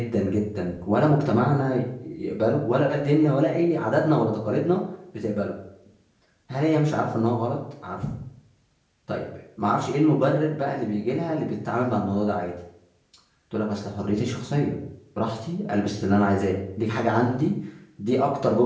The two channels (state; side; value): identical; both; correlation 1.00